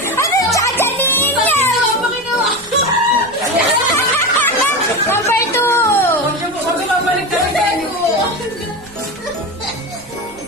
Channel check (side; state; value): right; noise; rumble, 25 dB below the sound